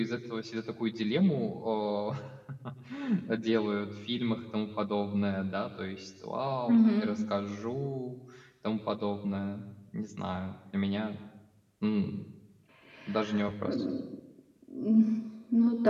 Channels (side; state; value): both; identical; correlation 1.00